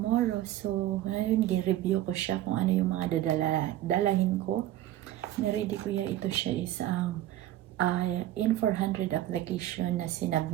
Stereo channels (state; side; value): quieter; left; 13.8 dB